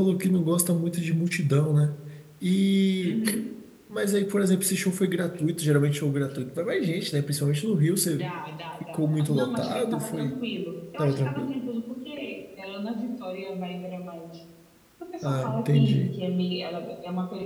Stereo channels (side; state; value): both; identical; correlation 1.00